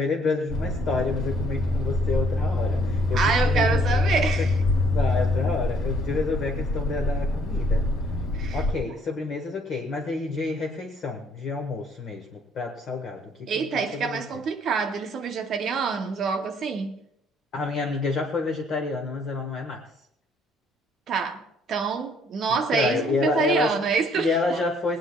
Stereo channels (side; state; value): both; normal; correlation 0.64